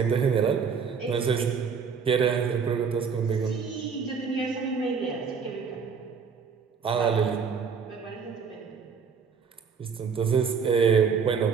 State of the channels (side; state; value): left; quieter; 6.0 dB